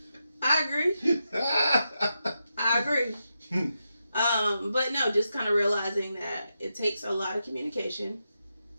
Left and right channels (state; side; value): inverted; both; correlation -0.87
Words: I agree. I agree. But no, just kind of realizing that it takes a lot of communication